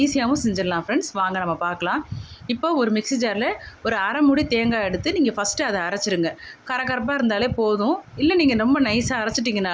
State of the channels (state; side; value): identical; both; correlation 1.00